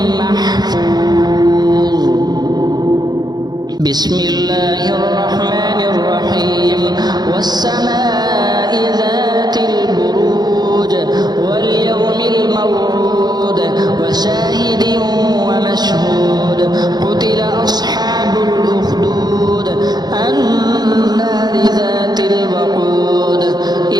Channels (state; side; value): late; left; 0.20 ms